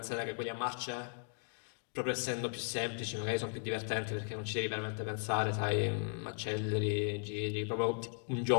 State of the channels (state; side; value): silent; right; 53 dB below the other